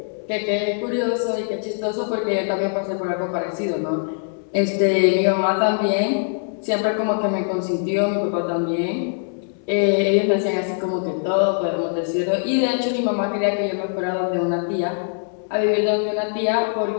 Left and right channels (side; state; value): right; silent; 64 dB below the other